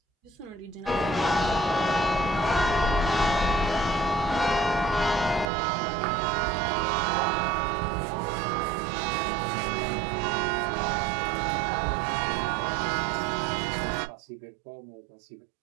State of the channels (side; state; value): left; drops out; at 5.5 s